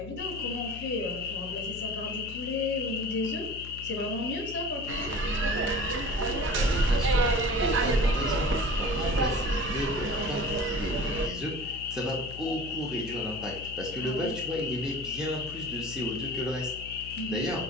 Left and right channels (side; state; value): left; noise; hum, 12 dB below the sound